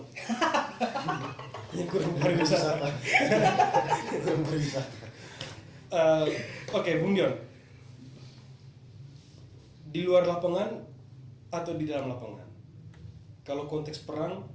Yang kurang pariwisata. Kurang pariwisata. Oke, Bung Dion. Di luar lapangan atau di dalam lapangan? Kalau konteks perang,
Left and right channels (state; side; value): identical; both; correlation 1.00